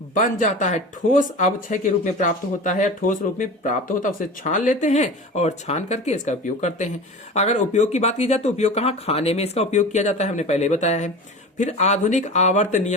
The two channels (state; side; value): normal; both; correlation 0.33